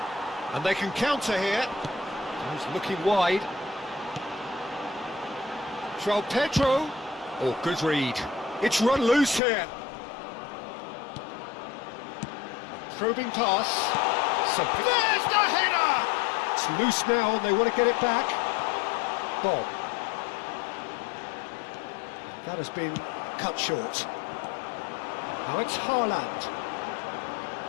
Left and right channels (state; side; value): drops out; right; at 9.4 s